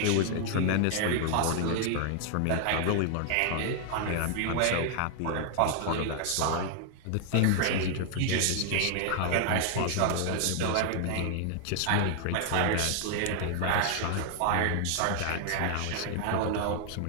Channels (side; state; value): both; different; correlation 0.00